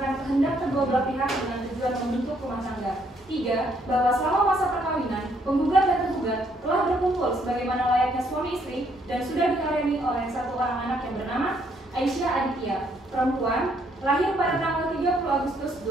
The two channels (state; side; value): normal; both; correlation 0.70